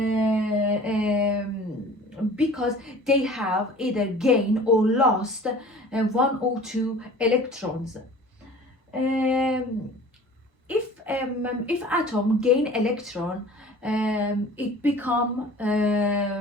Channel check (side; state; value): both; normal; correlation 0.45